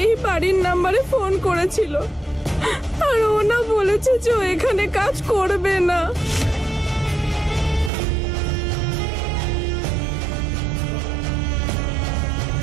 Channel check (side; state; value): left; drops out; at 7.9 s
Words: এই বাড়ির নাম্বারে ফোন করেছিল, আর ও না বলেছে যে ও এখানে কাজ করবে না।